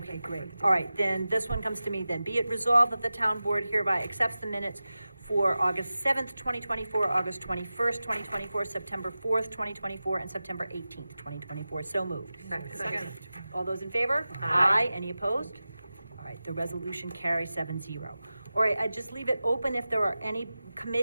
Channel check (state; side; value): inverted; both; correlation -0.95